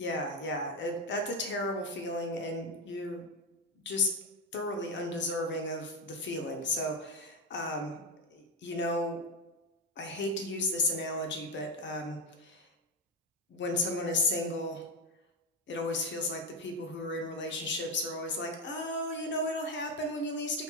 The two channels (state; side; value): normal; both; correlation 0.11